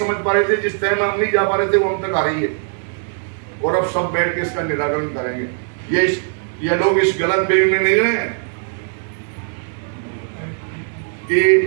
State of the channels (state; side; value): silent; left; 56 dB below the other